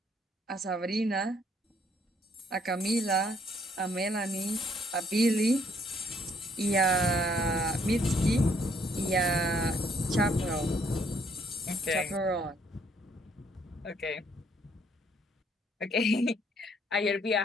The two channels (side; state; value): both; normal; correlation 0.67